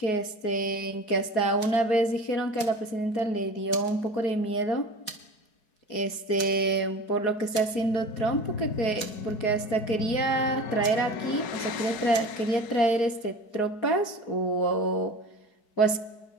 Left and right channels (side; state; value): right; late; 4.7 ms